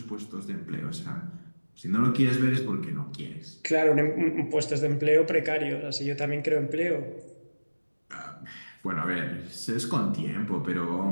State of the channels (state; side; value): inverted; both; correlation -1.00